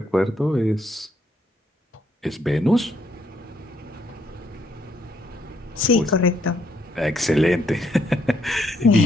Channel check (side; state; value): both; normal; correlation 0.73